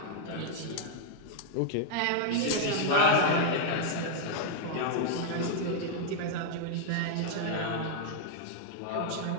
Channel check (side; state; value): both; different; correlation -0.01